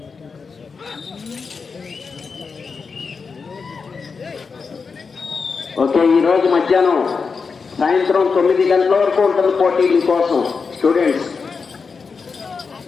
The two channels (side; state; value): right; quieter; 5.1 dB